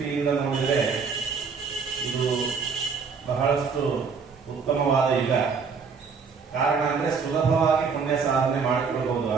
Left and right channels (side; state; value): left; quieter; 5.5 dB